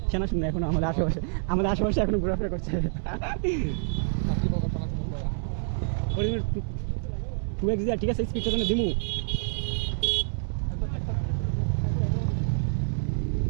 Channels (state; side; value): silent; left; digital silence